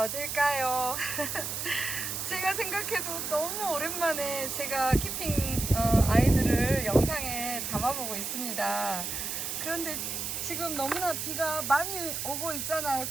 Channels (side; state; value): right; noise; hiss, 3 dB below the sound